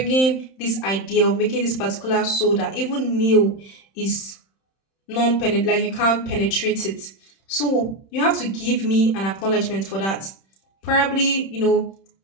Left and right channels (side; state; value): right; late; 31 ms